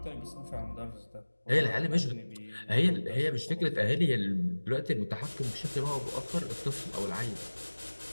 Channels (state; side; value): inverted; both; correlation -1.00